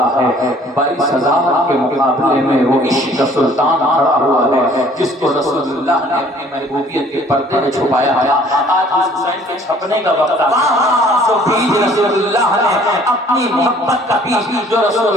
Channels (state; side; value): normal; both; correlation 0.56